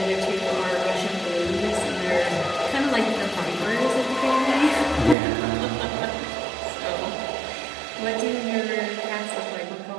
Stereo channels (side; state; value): left; drops out; at 5.2 s